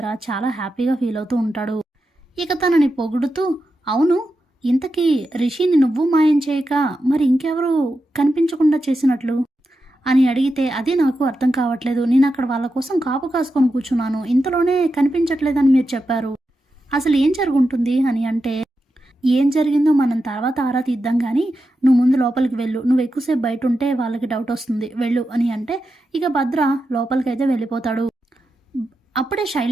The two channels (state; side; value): normal; both; correlation 0.89